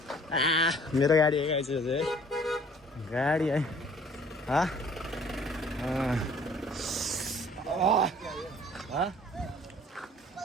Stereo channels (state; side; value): normal; both; correlation 0.54